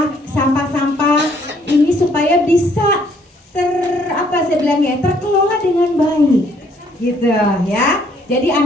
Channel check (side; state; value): both; normal; correlation 0.65